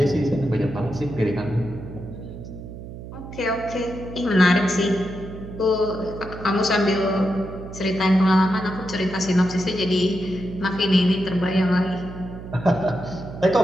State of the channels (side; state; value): right; noise; hum, 12 dB below the sound